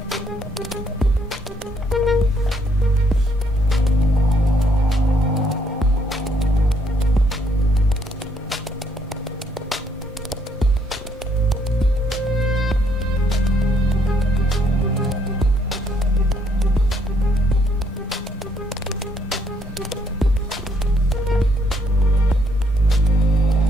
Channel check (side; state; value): both; normal; correlation 0.70